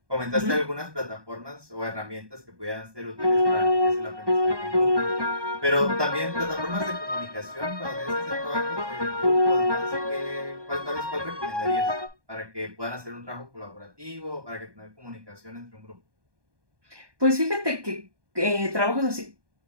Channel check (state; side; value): late; left; 1.2 ms